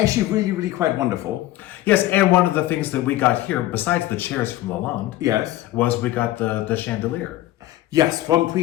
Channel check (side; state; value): right; quieter; 15.6 dB